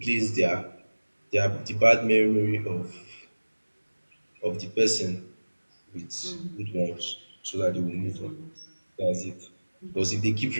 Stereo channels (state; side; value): inverted; both; correlation -1.00